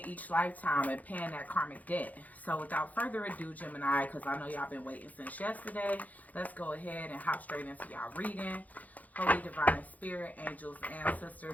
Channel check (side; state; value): right; late; 0.078 ms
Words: each lifetime and paying that karmic debt. So without further ado, Gemini, because I know y'all been waiting since yesterday, let's go ahead and hop straight into y'all reading. Holy Divine Spirit, angels,